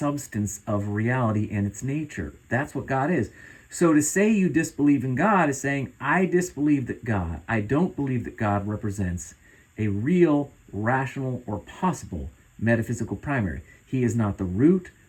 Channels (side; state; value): both; identical; correlation 1.00